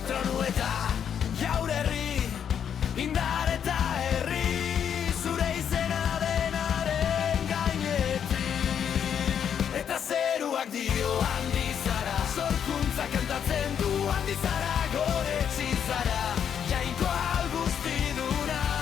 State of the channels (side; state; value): right; quieter; 8.3 dB